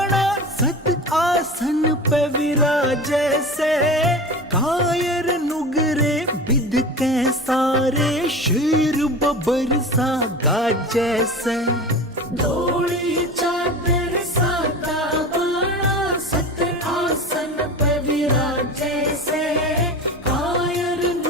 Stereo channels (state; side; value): normal; both; correlation 0.32